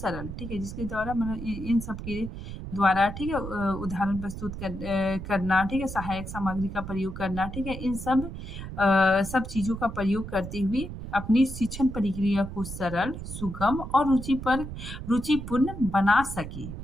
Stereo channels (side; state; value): right; noise; rumble, 9 dB below the sound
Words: ठीक है, जिसके द्वारा मतलब इन सब के द्वारा, ठीक है, उदाहरण प्रस्तुत करना, ठीक है, सहायक सामग्री का प्रयोग करना, ठीक है, इन सब चीजों का प्रयोग करते हुए अपनी शिक्षण प्रक्रिया को सरल, सुगम और रुचिपूर्ण बना सके,